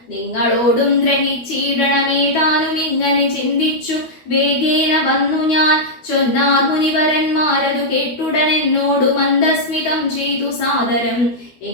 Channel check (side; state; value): right; late; 12 ms